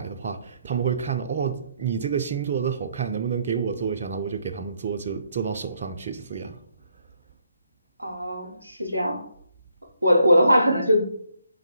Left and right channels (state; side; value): inverted; both; correlation -0.72